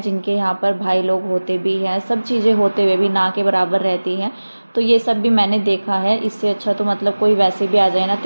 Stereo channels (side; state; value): both; inverted; correlation -1.00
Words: यहाँ पर भाई लोग होते भी हैं, सब चीज़ें होते हुए भी ना के बराबर रहती हैं। तो ये सब भी मैंने देखा है। इससे अच्छा तो मतलब कोई वैसे भी आ जाए ना